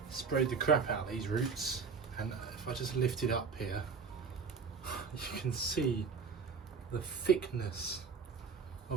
sprayed the crap out of these roots, and if I just lift it up here, you can see the thickness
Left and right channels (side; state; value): left; quieter; 5.4 dB